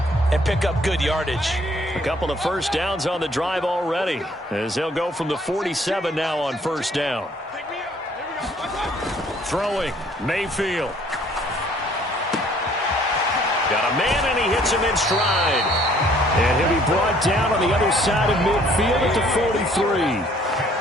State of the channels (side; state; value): both; normal; correlation 0.60